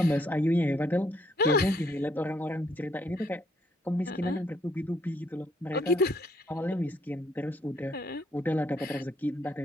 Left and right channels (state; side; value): normal; both; correlation 0.70